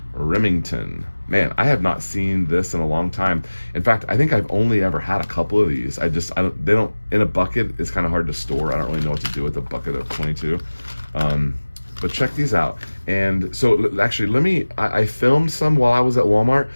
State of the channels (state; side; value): inverted; both; correlation -1.00